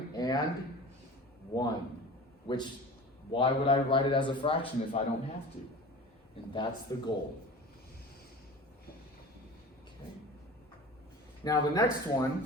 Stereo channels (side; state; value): both; normal; correlation 0.37